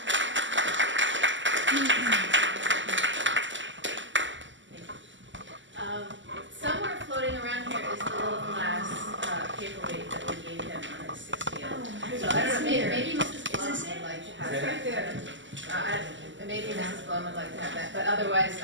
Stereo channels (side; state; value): left; late; 0.54 ms